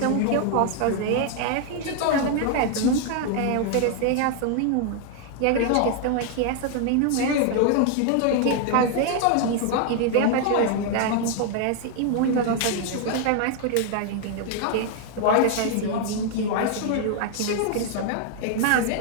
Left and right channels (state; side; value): different; both; correlation 0.00